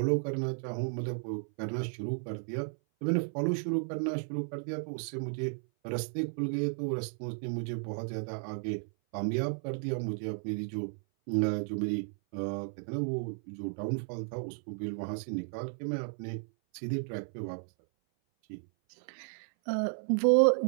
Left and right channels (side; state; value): left; silent; 55 dB below the other